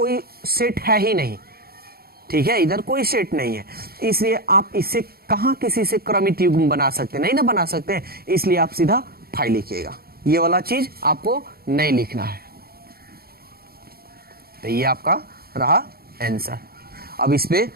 सेट है ही नहीं, ठीक है, इधर कोई सेट नहीं है, इसलिए आप इससे कहां किसी से क्रमित युग्म बना सकते, नहीं ना बना सकते, इसलिए आप सीधा 5 लिखिएगा। ये वाला चीज आपको नहीं लिखना है। तो ये आपका रहा आंसर। अब इस पे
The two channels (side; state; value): left; late; 0.44 ms